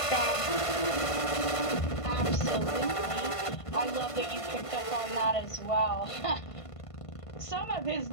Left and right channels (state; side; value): late; right; 1.5 ms